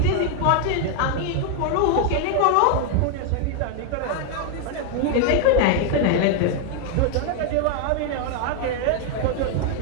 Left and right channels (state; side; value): different; both; correlation 0.00